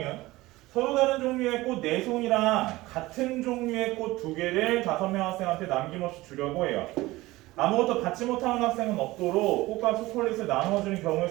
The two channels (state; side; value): quieter; left; 19.1 dB